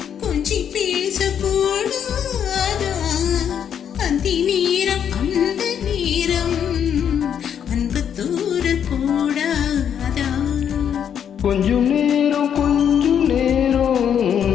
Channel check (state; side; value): quieter; right; 8.6 dB